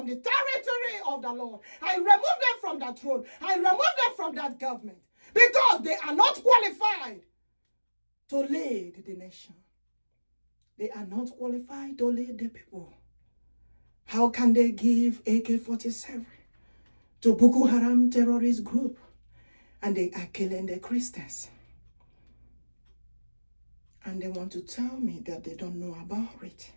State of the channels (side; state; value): both; inverted; correlation -1.00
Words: the territory of the Lord. I remove them from that throne. I remove them from that government because they are not qualified to lead the nation. They are not qualified to lead the people. How can they give AK-47 to Boko Haram terrorist group and they are killing the Christians? And they want to tell me that they don't know about it.